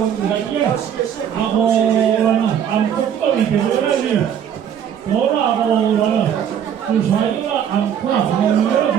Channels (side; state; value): left; quieter; 8.9 dB